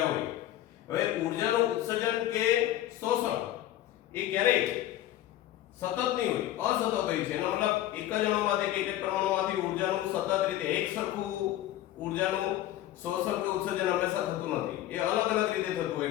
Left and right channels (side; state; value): right; quieter; 13.6 dB